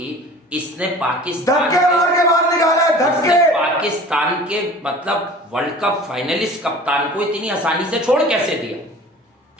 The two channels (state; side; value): normal; both; correlation 0.42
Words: इसने पाकिस्तान धक्के मार के बाहर निकाला है, धक्के। पाकिस्तान के मतलब वर्ल्ड कप फाइनलिस्ट कप्तान को इतनी आसानी से छोड़ कैसे दिया?